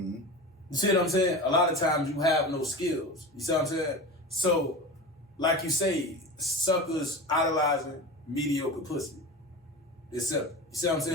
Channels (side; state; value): both; normal; correlation 0.29